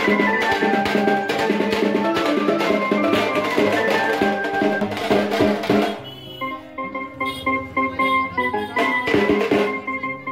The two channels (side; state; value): both; identical; correlation 1.00